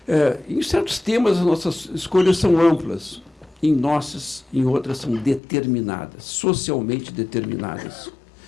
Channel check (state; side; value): drops out; right; at 5.4 s